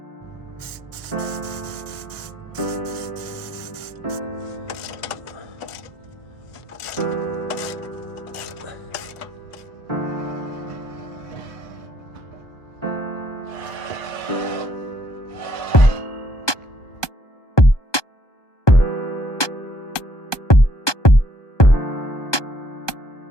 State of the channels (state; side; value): late; right; 1.2 ms